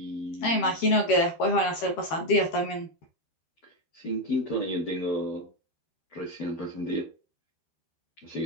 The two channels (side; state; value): right; late; 13 ms